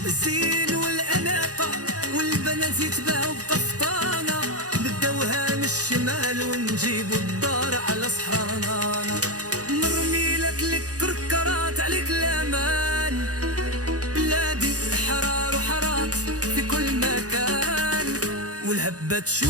الزين والأناقة والبنات يتباهوا بقفطانة، نبداوها من الشمال ونجيبو الدار على صحرانا، نرمي لك الكركرات عليك الأمان، بلادي حرار وحارات في كل مكان، والهبة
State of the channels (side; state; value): left; late; 0.67 ms